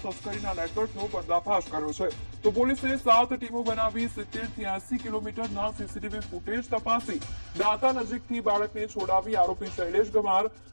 તસ્કરીના નેટવર્કનો પર્દાફાશ કર્યો છે. તો પોલીસે 7 ટીમો બનાવી 70 થી 80 કિલોમીટરના સીસીટીવી ફૂટેજ તપાસી દાંતા નજીકથી બાળકને છોડાવી આરોપી શૈલેષ ગમાર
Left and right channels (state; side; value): inverted; both; correlation -1.00